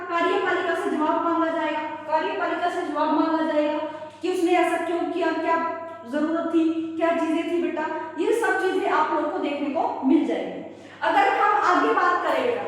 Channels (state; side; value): identical; both; correlation 1.00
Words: कार्यपालिका से जवाब मांगा जाएगा, कार्यपालिका से जवाब मांगा जाएगा कि उसने ऐसा क्यों किया, क्या जरूरत थी, क्या चीजें थी बेटा, ये सब चीजें आप लोगों को देखने को मिल जाएगी। अगर हम आगे बात करें बेटा,